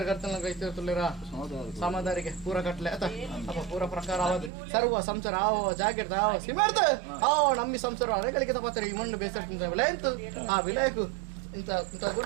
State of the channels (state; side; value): drops out; left; at 4.5 s